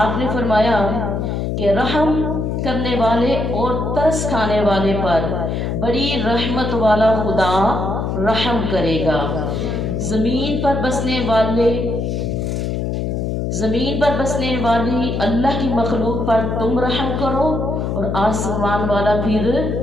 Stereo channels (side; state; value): left; noise; hum, 1 dB below the sound